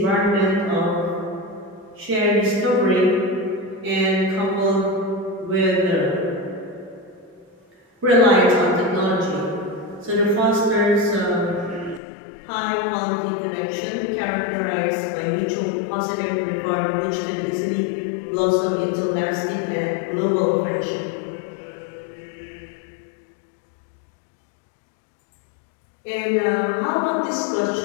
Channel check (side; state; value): right; drops out; at 12.0 s